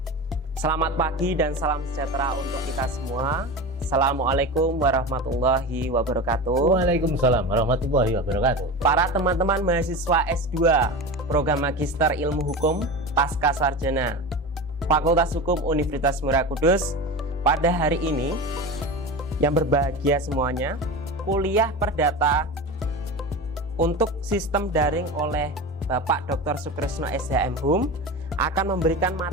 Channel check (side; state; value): both; normal; correlation 0.27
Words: Selamat pagi dan salam sejahtera untuk kita semua. Assalamualaikum warahmatullahi wabarakatuh. Waalaikumsalam warahmatullahi wabarakatuh. Para teman-teman mahasiswa S2 Program Magister Ilmu Hukum Pasca Sarjana Fakultas Hukum Universitas Muria Kudus, pada hari ini yang berbahagia semuanya, kuliah perdata untuk sistem daring oleh Bapak Dr. Sukresno SHM Hum akan memberikan